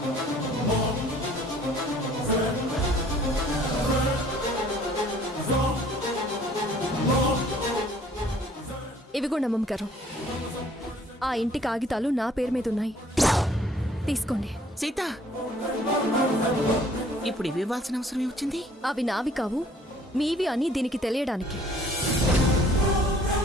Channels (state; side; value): normal; both; correlation 0.57